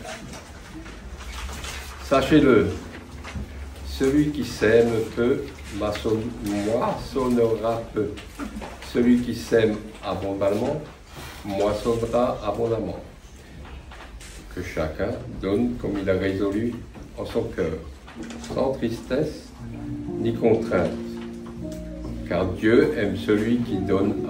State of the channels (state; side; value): identical; both; correlation 1.00